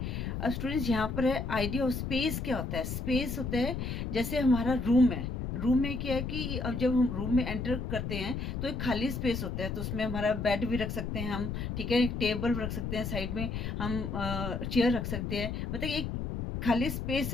अब स्टूडेंट्स, यहाँ पर है आइडिया ऑफ स्पेस। क्या होता है? स्पेस होता है जैसे हमारा रूम है। रूम में क्या है कि अब जब हम रूम में एंटर करते हैं तो एक खाली स्पेस होता है, तो उसमें हमारा बेड भी रख सकते हैं हम, ठीक है, एक टेबल रख सकते हैं, साइड में हम चेयर रख सकते हैं, मतलब एक खाली स्पेस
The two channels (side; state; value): left; noise; rumble, 3 dB below the sound